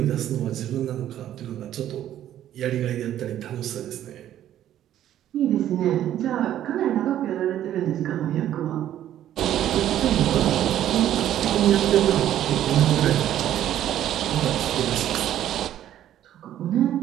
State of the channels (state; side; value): quieter; left; 11.7 dB